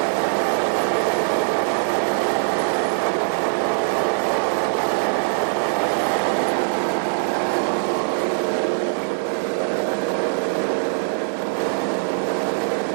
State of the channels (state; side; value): silent; left; 58 dB below the other